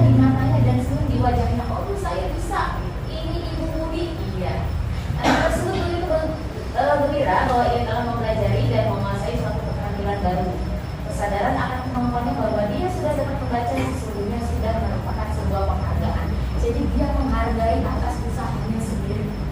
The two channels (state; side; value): identical; both; correlation 1.00